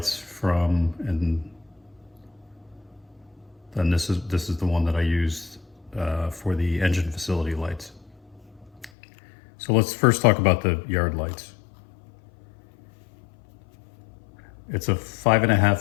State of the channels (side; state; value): right; drops out; at 8.9 s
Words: from, and then this is the one that I used for the engine facility lights. So let's first talk about the yard lights. It's a